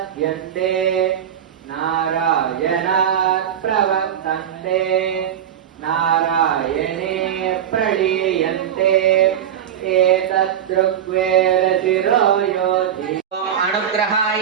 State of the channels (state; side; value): quieter; left; 9.5 dB